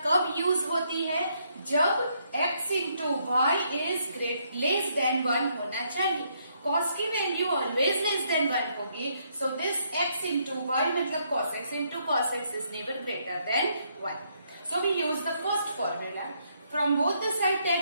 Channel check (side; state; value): both; inverted; correlation -0.73